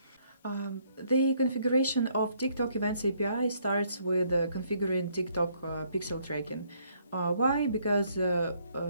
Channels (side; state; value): both; inverted; correlation -0.68